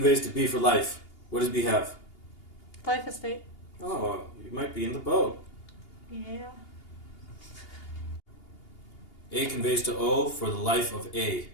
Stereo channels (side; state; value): right; late; 2.8 ms